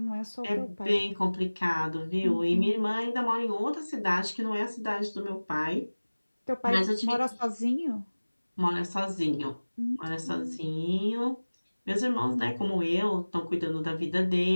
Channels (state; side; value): inverted; both; correlation -1.00